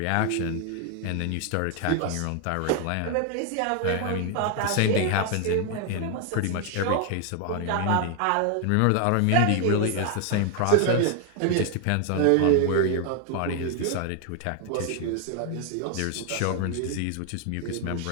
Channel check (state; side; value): different; both; correlation 0.00